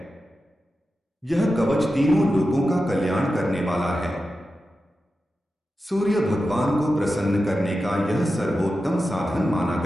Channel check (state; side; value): normal; both; correlation 0.91